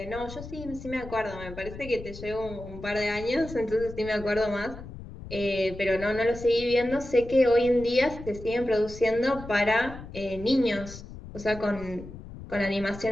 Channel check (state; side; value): noise; left; rumble, 13 dB below the sound